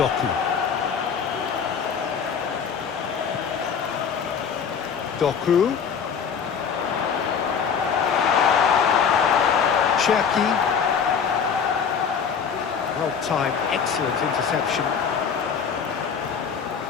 Doku. Cherki. Well timed, excellent interception.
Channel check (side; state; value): right; quieter; 6.8 dB